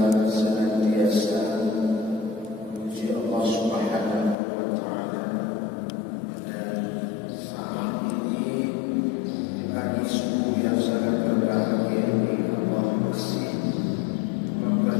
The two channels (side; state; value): right; drops out; at 4.4 s